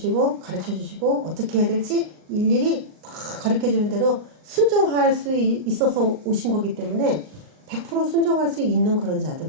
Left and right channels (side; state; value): left; late; 39 ms